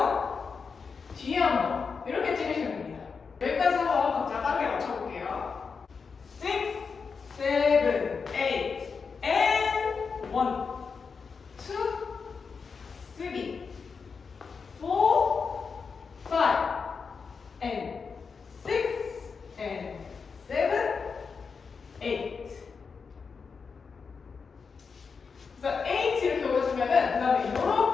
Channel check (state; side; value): quieter; right; 5.4 dB